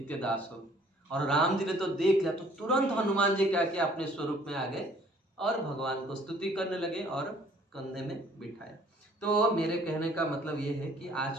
दास हो। और राम जी ने तो देख लिया, तो तुरंत हनुमान जी क्या किया, अपने स्वरूप में आ गए और भगवान को स्तुति करने लगे और कंधे में बिठाया। तो मेरे कहने का मतलब ये है कि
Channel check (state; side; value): normal; both; correlation 0.58